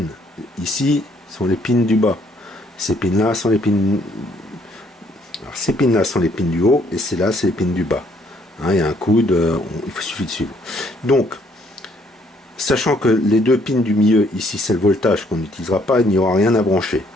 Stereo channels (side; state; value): both; normal; correlation 0.66